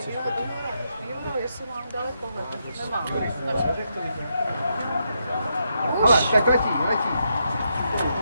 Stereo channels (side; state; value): both; inverted; correlation -0.80